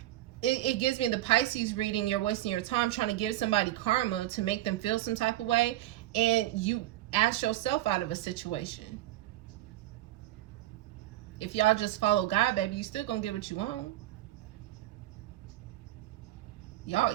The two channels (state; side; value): quieter; left; 15.4 dB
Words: It gives me the Pisces reading. You're wasting your time trying to give somebody karma to make them feel some type of way. And you ask yourself out of a situation. If y'all just follow God, baby, you still going to get what you want. Y'all